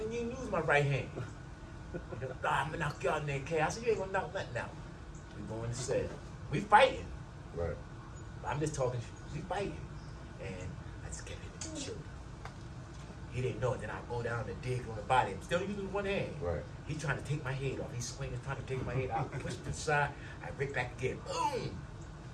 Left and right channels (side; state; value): both; identical; correlation 1.00